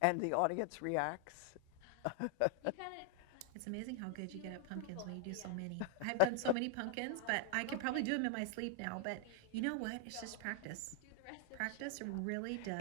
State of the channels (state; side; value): different; both; correlation 0.00